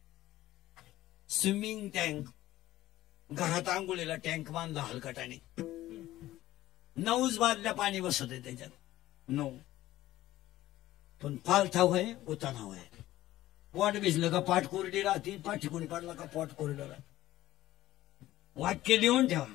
स्विमिंग टँक, घरात आंघोळीला टँक बांधला हलकटाने, 9 बादल्या पाणी बसत आहे त्याच्यात. 9 पण पालथाव आहे, उतानाव आहे. पोट भिजलं का पाठ कोरडी राहते, पाठ ठिकून पडला का पोट कोरडं राहते. वाक्य लिहून ठेवा,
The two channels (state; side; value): quieter; right; 15.2 dB